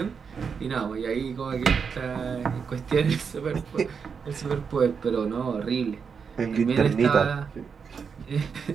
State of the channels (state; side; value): quieter; left; 6.1 dB